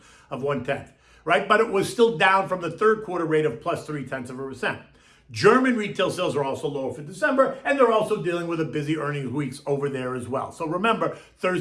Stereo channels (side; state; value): both; identical; correlation 1.00